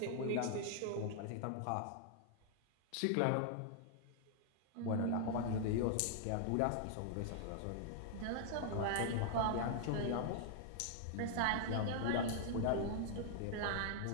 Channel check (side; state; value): both; different; correlation -0.01